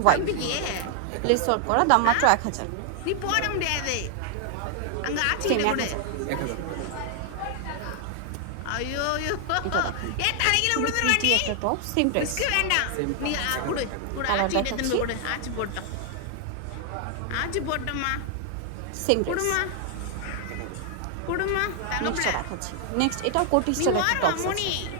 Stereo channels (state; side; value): different; both; correlation 0.00